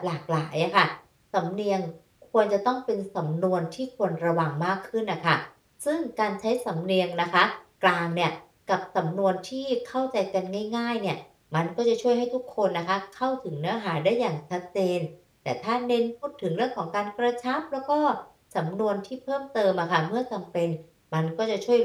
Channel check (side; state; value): both; identical; correlation 1.00